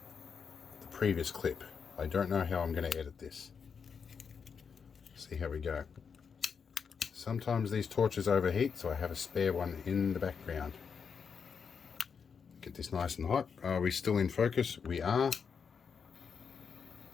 the previous clip. I don't know how I'm going to edit this. See how we go. Sometimes these torches overheat, so I have a spare one in the background. Get this nice and hot. Are we still in focus? We are.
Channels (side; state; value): right; quieter; 6.2 dB